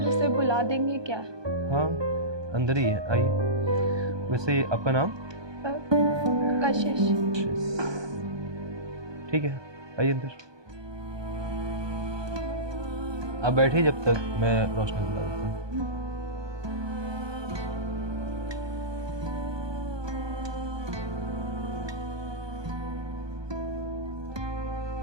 उसे बुला देंगे क्या? हाँ, अंदर ही है, आइए। वैसे आपका नाम? कशिश। ठीक है, आइए अंदर। आप बैठिए जब तक मैं रोशनी बुला देता हूँ।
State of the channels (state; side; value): late; left; 1.2 ms